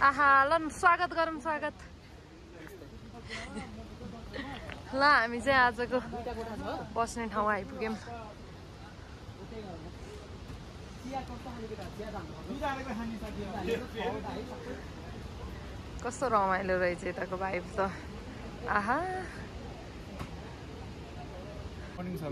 आहा ल स्वागत गरौँ स्वागत ल हामी चाहिँ आजको बस्ने ठाउँ आइपुग्यौँ कस्तो रमाइलो रहेछ यताको भाइब त आहा मर्निङ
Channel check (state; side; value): identical; both; correlation 1.00